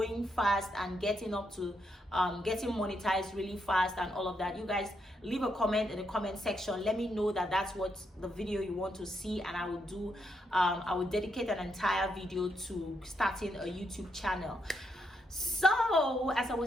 fast and getting up to getting monetized really fast and all of that, you guys leave a comment in the comment section. Let me know that that's what the video you want to see, and I will dedicate an entire video to starting a YouTube channel. So as I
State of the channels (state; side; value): normal; both; correlation 0.79